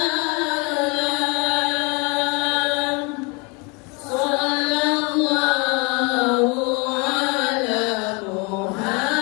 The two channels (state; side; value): quieter; right; 30.2 dB